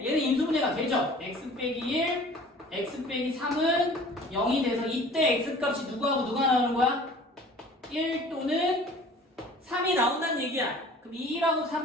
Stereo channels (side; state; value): both; normal; correlation 0.47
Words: 얘는 인수분해가 되죠. x 빼기 1, x 빼기 3은 0이 돼서 이때 x값이 누구하고 누가 나오는 거야? 1 또는 3이 나온다는 얘기야. 그럼 2하고